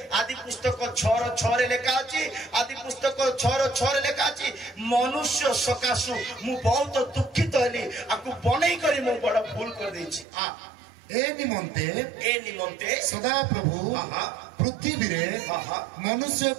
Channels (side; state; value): left; drops out; at 10.2 s